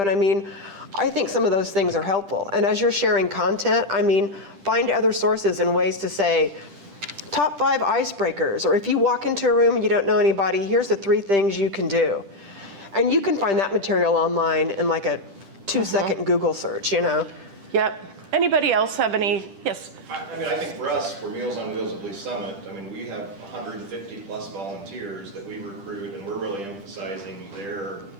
I think some of those things are helpful. And as you're sharing content, find other sources and ways to say, top 5 icebreakers, or if you walk into a room and you don't know anybody, here's the 3 things you can do. And you can find that material online in like a 2-second Google search, Yep. Anybody else have any? Yes. I think for us, for Meals on Wheels at Lee's Summit, we have 150 plus volunteers that we recruit, and we're really emphasizing their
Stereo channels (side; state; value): left; late; 10 ms